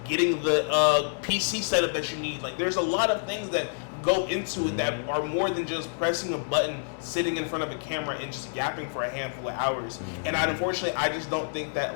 getting the PC setup that you need. Like, there's a lot of things that go into it that are more than just pressing a button, sitting in front of a camera, and just yapping for a handful of hours. And unfortunately, I just don't think that,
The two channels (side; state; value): right; silent; digital silence